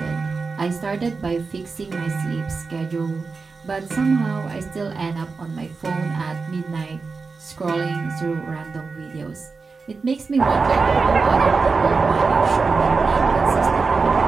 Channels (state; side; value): quieter; left; 4.5 dB